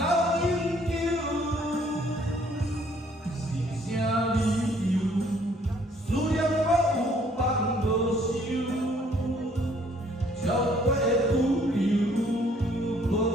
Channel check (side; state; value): both; normal; correlation 0.62